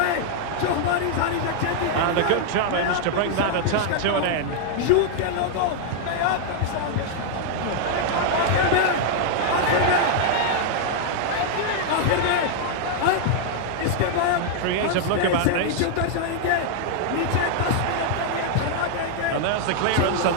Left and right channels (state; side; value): different; both; correlation -0.01